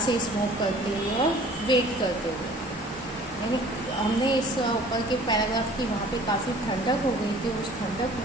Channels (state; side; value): normal; both; correlation 0.50